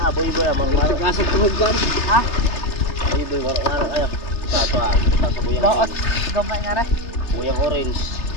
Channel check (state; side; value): late; right; 3.3 ms